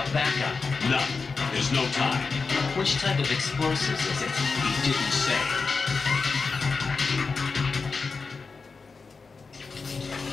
backup? None. There's no time. Which type of explosives is it? He didn't say.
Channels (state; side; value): quieter; right; 4.6 dB